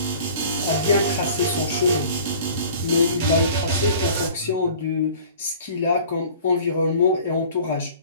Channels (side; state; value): both; inverted; correlation -0.46